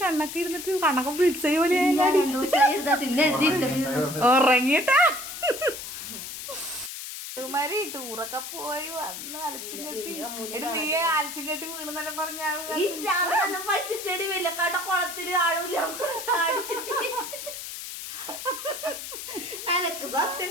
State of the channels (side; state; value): left; noise; hiss, 9 dB below the sound